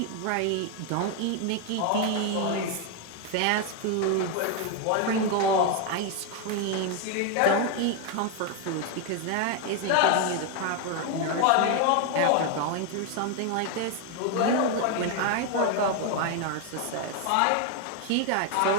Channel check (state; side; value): different; both; correlation 0.01